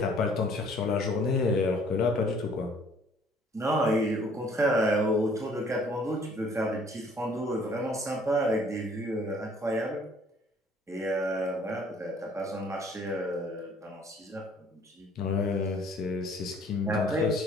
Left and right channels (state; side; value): normal; both; correlation 0.58